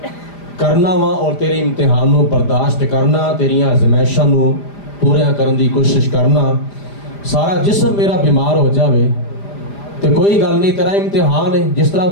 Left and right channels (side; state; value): right; late; 5.0 ms